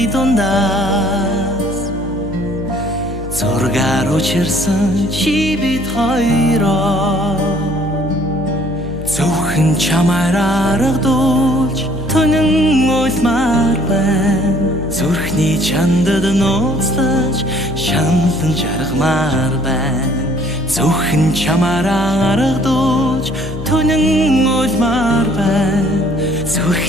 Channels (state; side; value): noise; left; hum, 10 dB below the sound